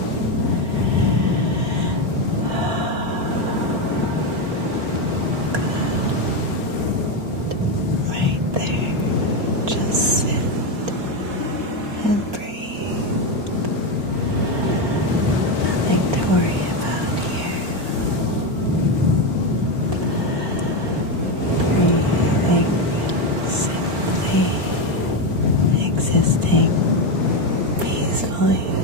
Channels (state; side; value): late; left; 4.4 ms